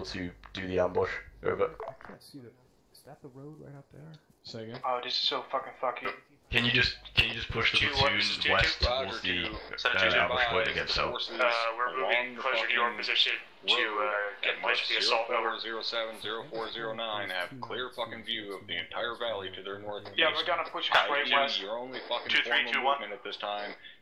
to do the ambush. Over. I can't see the. Is that the road right up there? Say again. Oh, this is so fucking fucky. Can you just push the platoon west towards the ambush point again? So we're moving closer to your position to get closer to the assault. Over. 07, 0409 have clear fucking view of the entire valley to their northeast. Yeah, we're gonna push straight west. Your only fucking formal movement at this time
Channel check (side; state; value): both; identical; correlation 1.00